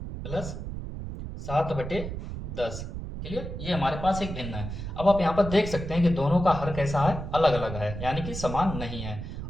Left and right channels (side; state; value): right; noise; rumble, 7 dB below the sound